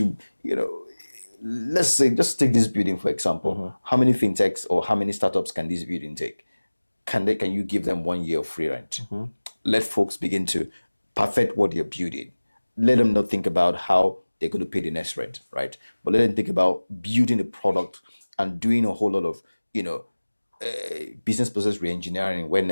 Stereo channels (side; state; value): both; inverted; correlation -1.00